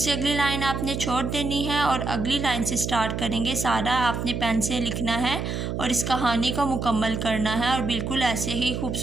अगली लाइन आपने छोड़ देनी है और अगली लाइन से स्टार्ट करेंगे। सारा आपने पेन से लिखना है और इस कहानी को मुकम्मल करना है और बिल्कुल ऐसे ही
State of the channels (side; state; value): right; noise; hum, 3 dB below the sound